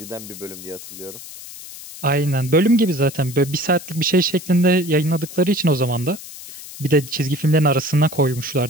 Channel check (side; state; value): left; noise; hiss, 14 dB below the sound